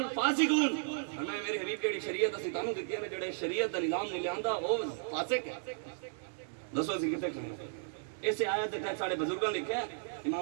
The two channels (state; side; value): silent; left; 55 dB below the other